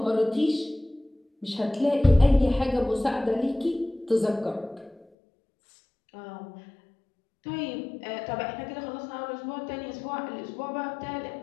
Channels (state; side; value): drops out; right; at 5.1 s